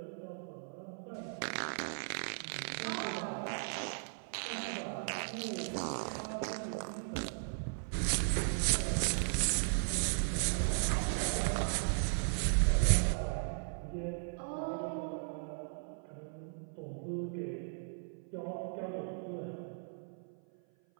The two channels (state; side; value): silent; left; 53 dB below the other